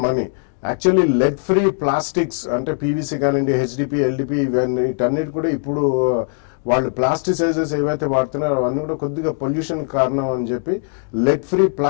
money. Actually lead free plastics అంటే పీవీసీ కానివ్వండి, హెచ్డిపి, ఎల్డిపి, ఇవన్నీ వీటన్నిటి కూడా ఇప్పుడు వాళ్ళు ప్లాస్టిసైజర్స్ ఏవైతే వాడుతున్నారో అవన్నీ కూడా కొద్దిగా పొల్యూషన్ కారణం అని చెప్పి లెడ్ ఫ్రీ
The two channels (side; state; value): right; silent; digital silence